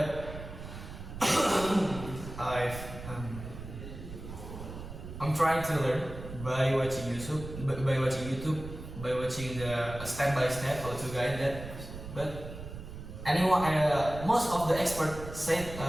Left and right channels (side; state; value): right; noise; rumble, 11 dB below the sound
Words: I'm trying to learn by watching YouTube, by watching the step by step how to guide that. But anyone, most of the experts said